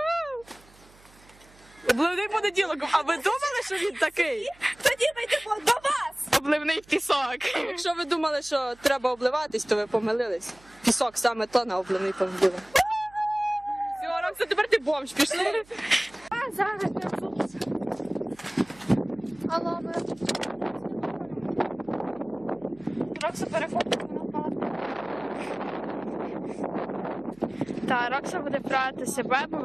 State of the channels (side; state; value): right; noise; hum, 26 dB below the sound